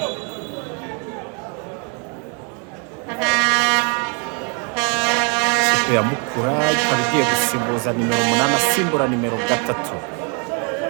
ya Mukura ikaba igiye gusimbuza nimero 8 asimbura nimero 3,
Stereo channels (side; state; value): left; quieter; 35.3 dB